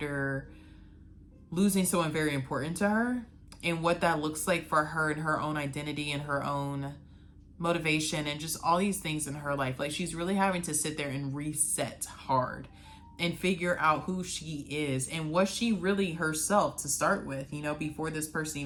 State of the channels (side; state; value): both; identical; correlation 1.00